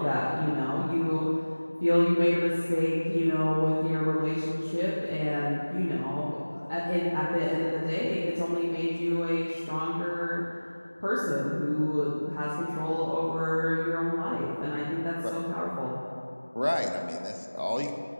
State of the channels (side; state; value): both; inverted; correlation -1.00